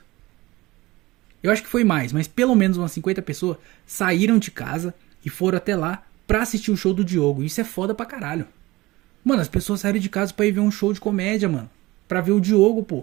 Eu acho que foi mais, mas pelo menos umas 50 pessoas saíram de casa e foram até lá pra assistir o show do Diogo. Isso é foda pra caralho. Mano, as pessoas saíram de casa pra ir ver um show de comédia, mano. Pra ver o Diogo,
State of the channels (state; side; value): quieter; left; 20.0 dB